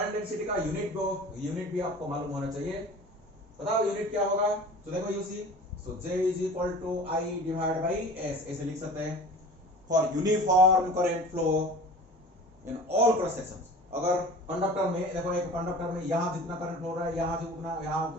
density का unit भी आपको मालूम होना चाहिए। बताओ unit क्या होगा। तो देखो you see, so J is equal to I divided by S, ऐसे लिख सकते हैं for uniform current flow in all cross sections. अगर कंडक्टर में देखो, एक कंडक्टर में यहां जितना करंट फ्लो रहा है, यहां से उतना,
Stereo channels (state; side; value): normal; both; correlation 0.40